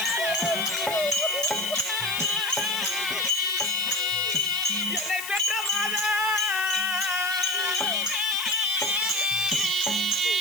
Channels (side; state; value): left; noise; hiss, 9 dB below the sound